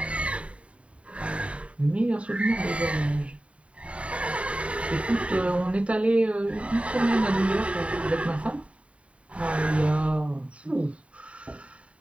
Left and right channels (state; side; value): late; left; 0.063 ms